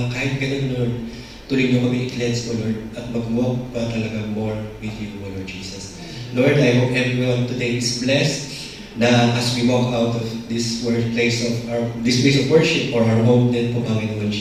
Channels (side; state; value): both; identical; correlation 1.00